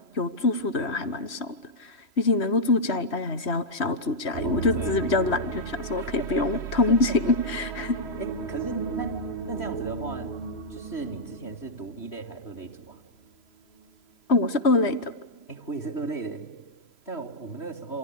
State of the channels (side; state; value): right; late; 3.1 ms